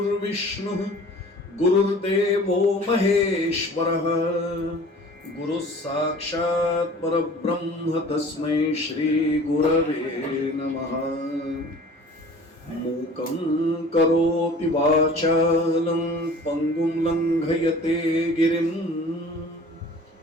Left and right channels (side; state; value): both; normal; correlation 0.45